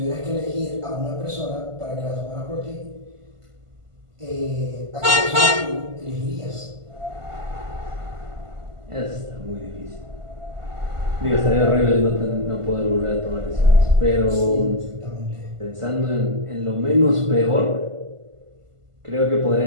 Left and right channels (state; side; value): late; left; 1.5 ms